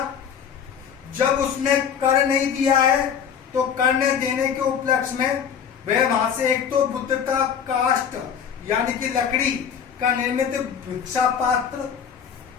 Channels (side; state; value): right; quieter; 7.7 dB